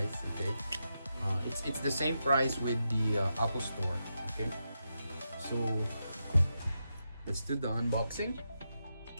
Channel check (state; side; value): inverted; both; correlation -0.87